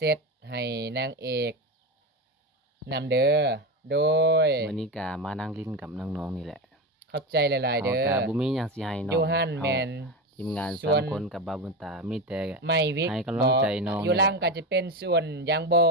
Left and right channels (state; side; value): normal; both; correlation 0.19